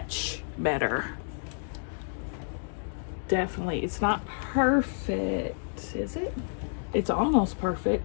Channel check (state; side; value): silent; right; digital silence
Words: better. Definitely. It's not perfect, is it? It's almost